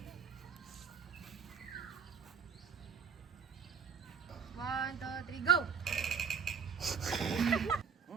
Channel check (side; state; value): left; quieter; 6.5 dB